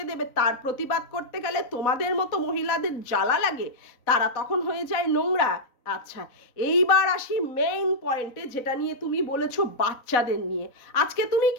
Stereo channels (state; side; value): late; right; 3.9 ms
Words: দেবে, তার প্রতিবাদ করতে গেলে তোমাদের মতো মহিলাদের জ্বালা লাগে, তারা তখন হয়ে যায় নোংরা। আচ্ছা, এইবার আসি মেইন পয়েন্টে, যেটা নিয়ে তুমি বলেছো বাচ্চাদের নিয়ে। আজকে তুমি